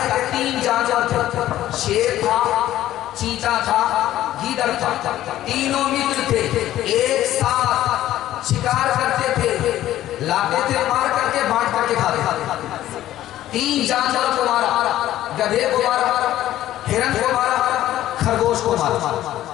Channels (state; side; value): quieter; right; 13.6 dB